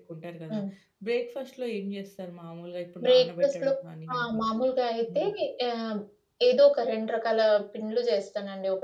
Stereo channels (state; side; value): identical; both; correlation 1.00